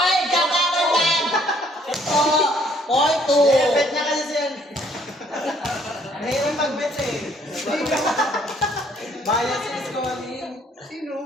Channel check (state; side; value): normal; both; correlation 0.63